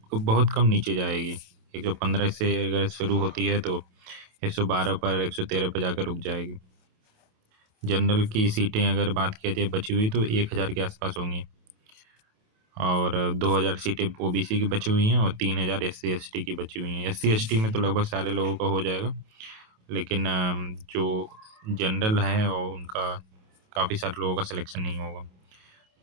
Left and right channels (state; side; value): late; left; 28 ms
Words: बहुत कम नीचे जाएगी। 115 से अगर शुरू होती है तो 112 पर 113 पर जाकर रुक जाएगी। जनरल की सीटें अगर बात किया जाए बची हुई तो 1,000 के आसपास होंगी और 2,000 सीटें ओबीसी की बची हुई हैं और 3,000 एससी एसटी की बची हुई हैं। एससी एसटी में तो लगभग सारे लोगों का हो जाएगा, लेकिन जो जनरल है और उनका काफ़ी सारे लोगों का सिलेक्शन नहीं होगा।